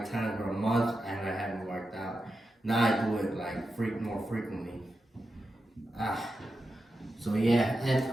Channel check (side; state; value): both; normal; correlation 0.89